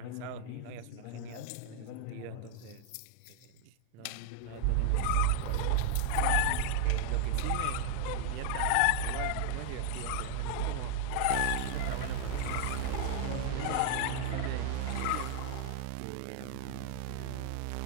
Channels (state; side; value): different; both; correlation 0.00